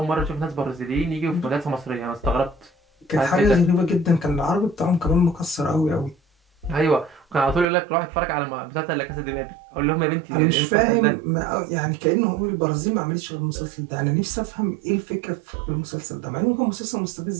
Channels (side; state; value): left; drops out; at 7.7 s